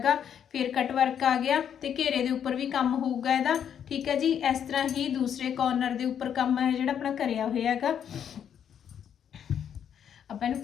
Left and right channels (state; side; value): quieter; right; 8.7 dB